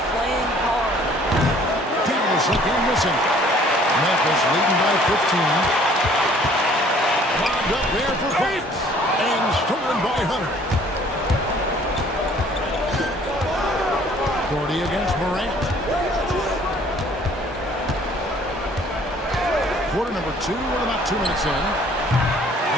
playing hard. Dallas again missing. Memphis leading by 15. Lobbed up there for Fox. And stolen by Hunter. Gordy against Morant. Quarter number 2, we're about 2 minutes in.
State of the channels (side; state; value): both; normal; correlation 0.56